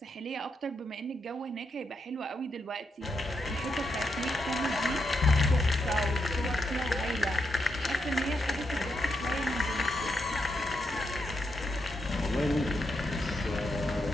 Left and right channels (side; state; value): both; normal; correlation 0.82